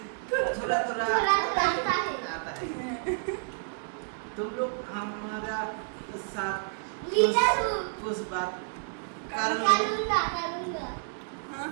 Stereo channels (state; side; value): silent; left; 58 dB below the other